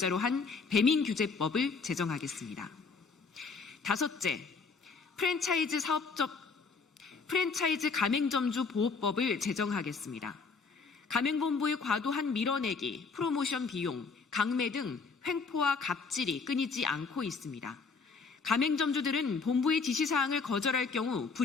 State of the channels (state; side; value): quieter; right; 4.8 dB